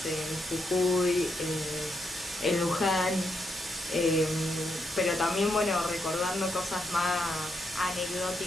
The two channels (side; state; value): both; normal; correlation 0.81